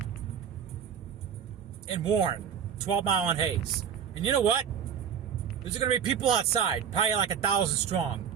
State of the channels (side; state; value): left; quieter; 8.0 dB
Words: In Warren, 12 Mile and Hayes. And you know what? There's going to be people outside, probably like 1,000